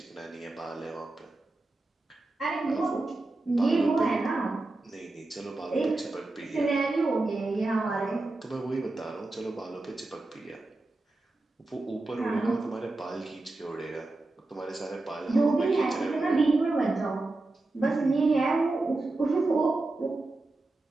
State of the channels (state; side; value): quieter; left; 3.0 dB